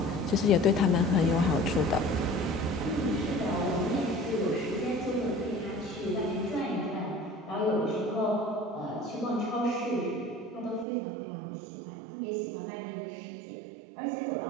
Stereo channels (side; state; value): left; drops out; at 10.9 s